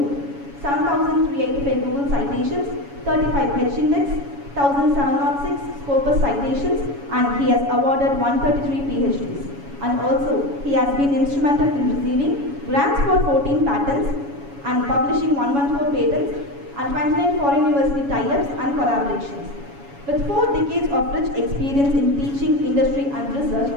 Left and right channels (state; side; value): late; left; 7.1 ms